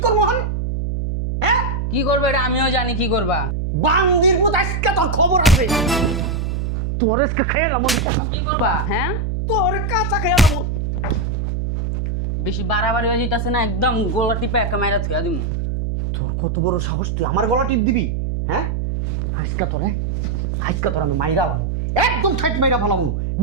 করবো? হন, হ্যাঁ, কি করবে এটা আমিও জানি কি করবা। বান্দির মতো আজকে তোর খবর আছে। তোর আজকে খেয়ালাম, কি করবা? হ্যাঁ, তোর কাঁচা খেয়ালাম। বেশি বাড়াবাড়ি হয়ে যেতেছে না, একদম গোলা টিপে একটা মাইরা থুয়া দিমু। তোর কত বড় সাহস, তুই আমার গলা টিপ দিবি? হ্যাঁ, আজকে তোর আমি মাইরা ভালো, একদম ঠাইট মাইরা ভালাম।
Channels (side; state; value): right; noise; hum, 1 dB below the sound